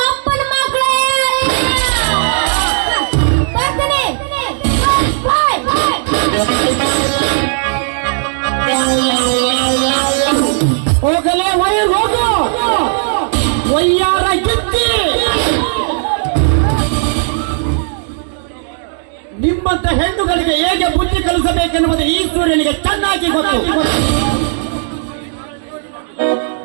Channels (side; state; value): left; silent; digital silence